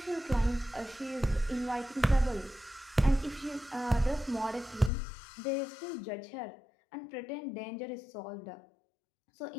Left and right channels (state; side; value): drops out; right; at 4.9 s